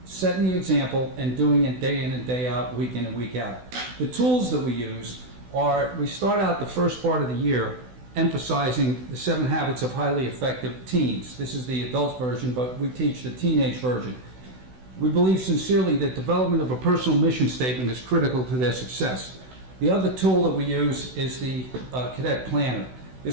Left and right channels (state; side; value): late; left; 16 ms